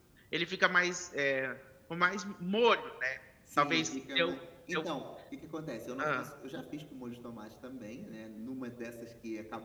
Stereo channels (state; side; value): identical; both; correlation 1.00